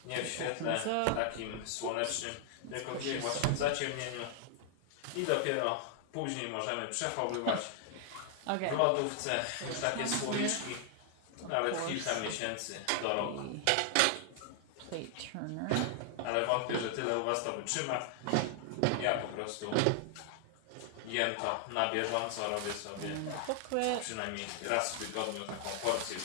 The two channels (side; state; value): both; different; correlation 0.00